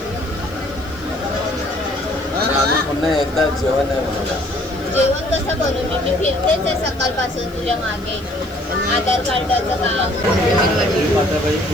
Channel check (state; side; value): noise; left; hiss, 27 dB below the sound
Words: पुन्हा एकदा जेवण आहे मला. जेवण कसं करू मी फिरतेच आहे सकाळपासून तुझ्या मागे. आधार कार्डाचं काम पण करत आहे